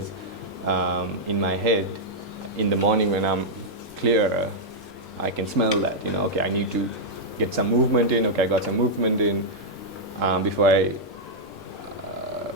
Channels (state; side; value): normal; both; correlation -0.05